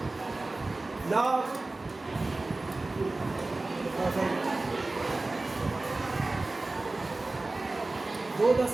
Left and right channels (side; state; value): left; quieter; 3.1 dB